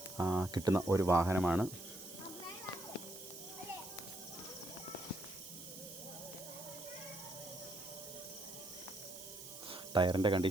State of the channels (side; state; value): right; noise; hiss, 12 dB below the sound